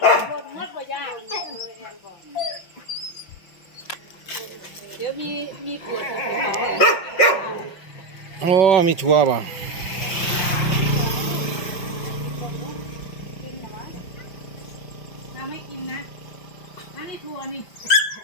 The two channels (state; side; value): late; right; 5.5 ms